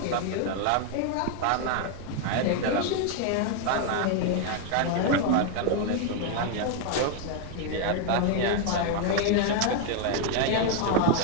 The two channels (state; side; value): different; both; correlation 0.01